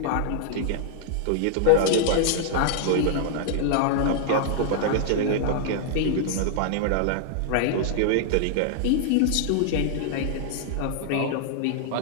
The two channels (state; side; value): different; both; correlation -0.01